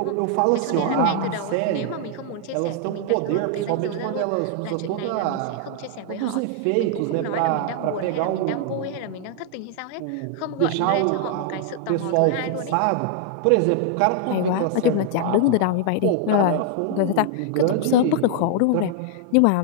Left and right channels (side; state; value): both; different; correlation 0.00